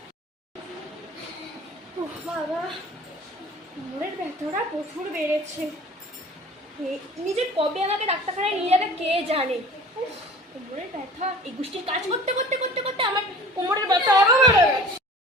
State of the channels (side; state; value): both; normal; correlation 0.43